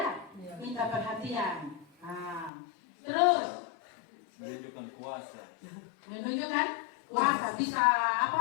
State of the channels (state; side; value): drops out; right; at 2.5 s